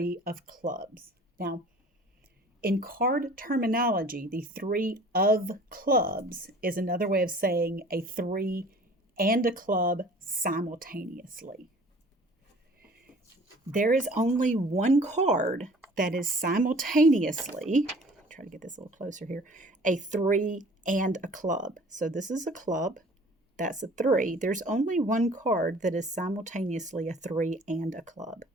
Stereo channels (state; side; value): normal; both; correlation 0.49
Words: of clubs. Now, in card terminology, the 3 of clubs is another way of saying a 3 and a club simultaneously. There is only one card that is simultaneously, try to get this a little closer here, a 3 and a club. So this is a club, that's a 3. There's only one card that is simultaneously a 3 and a club.